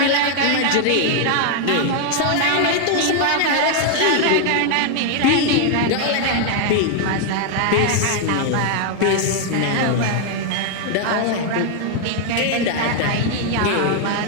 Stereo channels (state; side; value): different; both; correlation 0.00